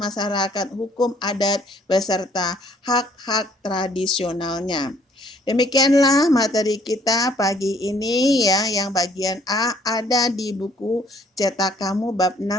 hukum adat beserta hak-hak tradisionalnya. Demikianlah materi kita pagi ini ya, yang bagian A ada di buku cetak kamu bab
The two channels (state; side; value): normal; both; correlation 0.62